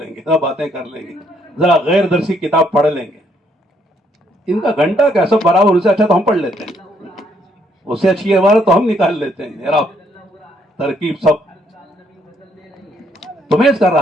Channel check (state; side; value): normal; both; correlation 0.70